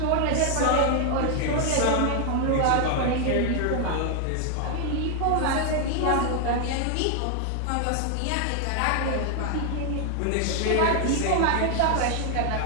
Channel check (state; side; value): different; both; correlation 0.00